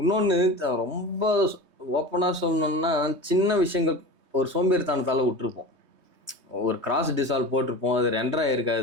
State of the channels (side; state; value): left; late; 3.2 ms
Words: இன்னொன்று ரொம்ப ஓப்பனாக சொல்லணும்னா, சின்ன விஷயங்கள் ஒரு சோம்பேறித்தனத்தால் விட்டுருப்போம். ஒரு கிராஸ் டிசால்வ் போட்டிருப்போம், அது ரெண்டராக